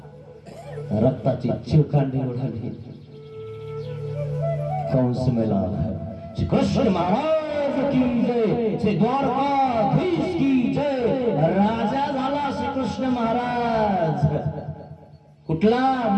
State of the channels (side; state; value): both; identical; correlation 1.00